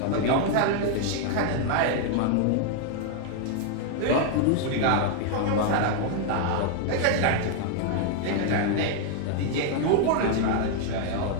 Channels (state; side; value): different; both; correlation 0.00